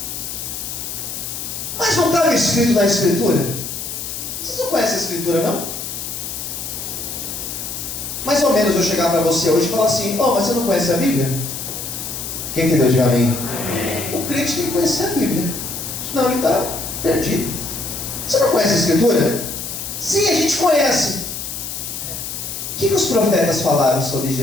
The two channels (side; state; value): left; noise; hiss, 6 dB below the sound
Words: Mas não estava escrito na Escritura? Vocês não conhecem a Escritura, não? Mais ou menos eu chegar para você hoje e falar assim: mas você não conhece a Bíblia? Quem entendeu? Diga amém. O crente tem que conhecer a Bíblia, senão ele está perdido. Você não conhece a Escritura? Sim, a gente conhece. O que os profetas falaram sobre